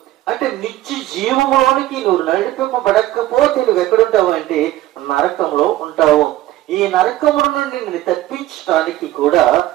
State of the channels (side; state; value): left; quieter; 15.0 dB